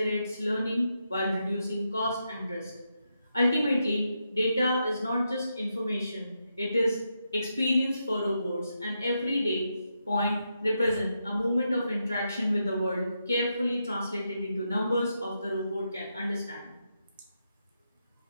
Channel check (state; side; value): inverted; both; correlation -0.84